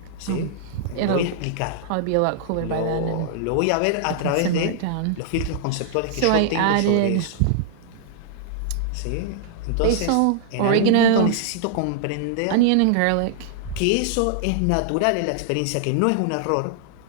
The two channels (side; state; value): both; different; correlation -0.01